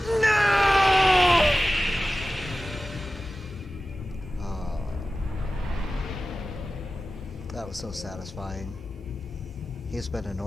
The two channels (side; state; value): both; normal; correlation 0.95